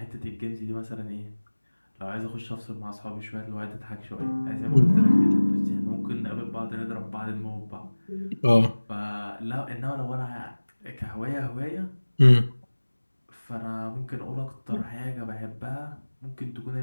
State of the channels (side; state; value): both; inverted; correlation -1.00